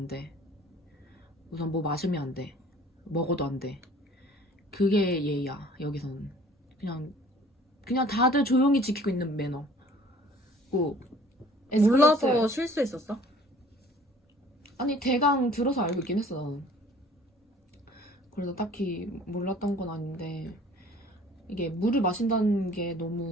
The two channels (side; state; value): both; normal; correlation 0.51